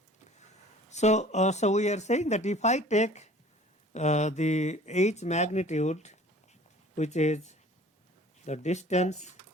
So we are saying that if I take the h magnitude, which is the distance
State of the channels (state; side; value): normal; both; correlation 0.48